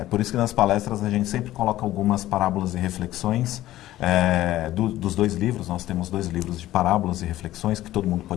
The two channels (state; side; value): quieter; right; 14.8 dB